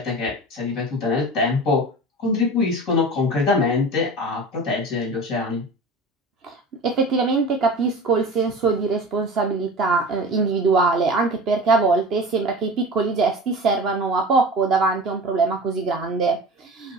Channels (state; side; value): normal; both; correlation 0.34